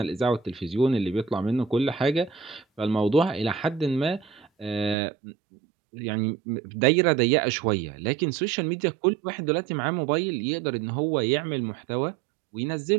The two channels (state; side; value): drops out; left; at 5.0 s